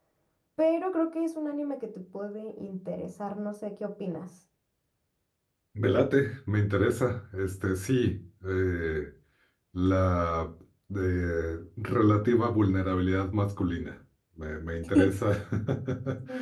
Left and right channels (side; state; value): both; identical; correlation 1.00